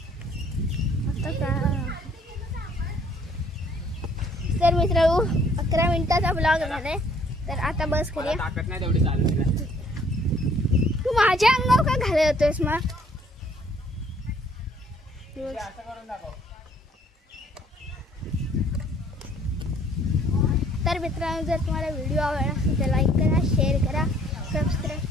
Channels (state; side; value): normal; both; correlation 0.60